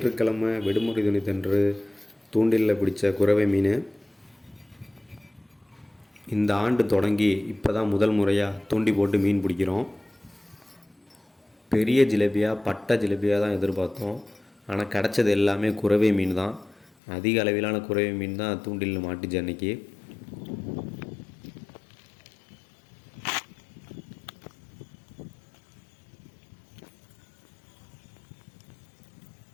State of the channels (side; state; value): right; drops out; at 16.9 s